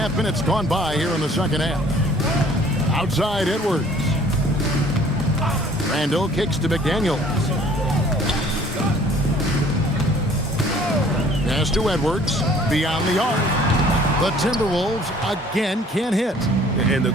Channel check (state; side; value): normal; both; correlation 0.55